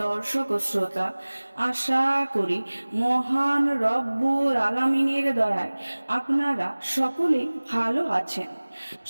দর্শক ও শ্রোতা, আশা করি মহান রব্বুল আলামিনের দয়ায় আপনারা সকলেই ভালো আছেন।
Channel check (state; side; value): inverted; both; correlation -1.00